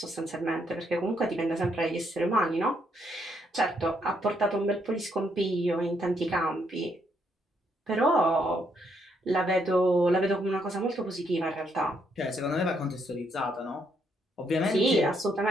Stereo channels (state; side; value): normal; both; correlation 0.74